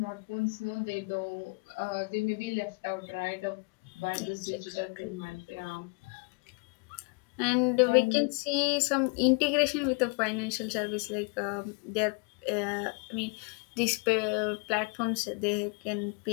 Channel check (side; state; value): right; quieter; 32.9 dB